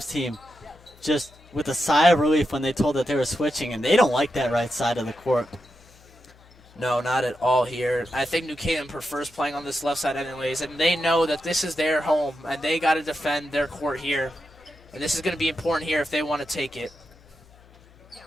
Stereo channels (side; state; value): left; noise; hum, 26 dB below the sound